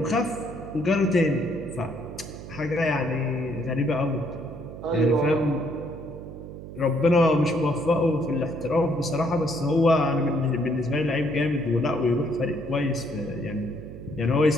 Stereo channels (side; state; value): right; noise; hum, 12 dB below the sound